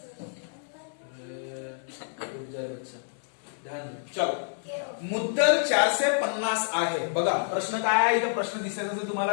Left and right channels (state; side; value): silent; right; digital silence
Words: चलो मुद्दल 450 आहे बघा। प्रश्न काय आहे? इथे प्रश्न दिसेल